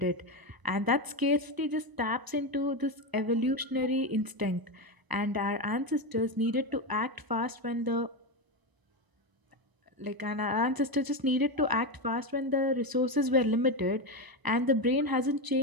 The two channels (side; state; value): left; late; 1.0 ms